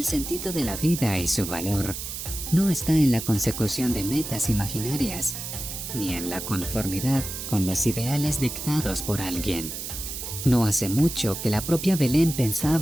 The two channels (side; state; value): right; noise; hiss, 7 dB below the sound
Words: sentido de la vida y su valor no está en la consecución de metas imaginarias, ni en la conformidad con los ideales dictados por alguien. No hace mucho que la propia Belén